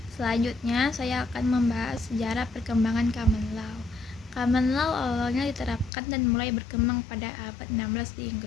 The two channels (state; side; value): drops out; right; at 5.9 s